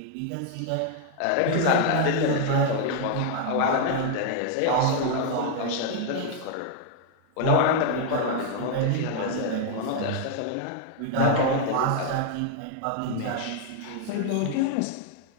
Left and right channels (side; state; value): both; different; correlation 0.00